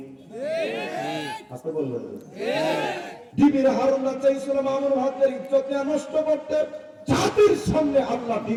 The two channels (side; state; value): both; identical; correlation 1.00